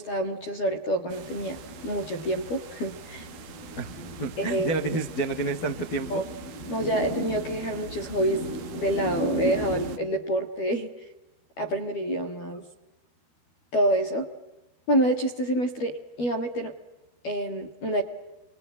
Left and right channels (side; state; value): right; late; 12 ms